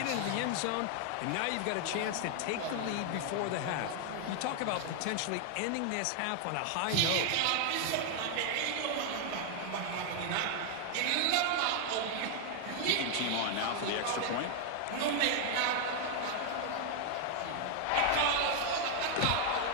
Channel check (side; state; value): both; different; correlation 0.00